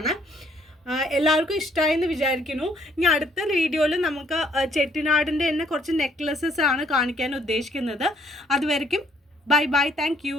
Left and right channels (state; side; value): normal; both; correlation 0.65